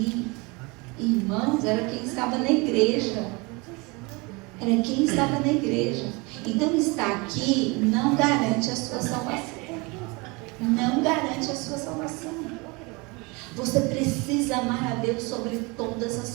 Irmãos, era quem estava na igreja. Era quem estava na igreja. Então, estar aqui não garante a sua salvação. Não garante a sua salvação. Você precisa amar a Deus sobre todas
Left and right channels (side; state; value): left; quieter; 27.0 dB